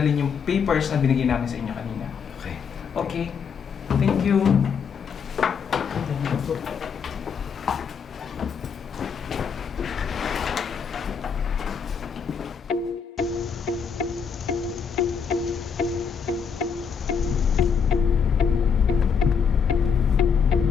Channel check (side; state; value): right; quieter; 6.5 dB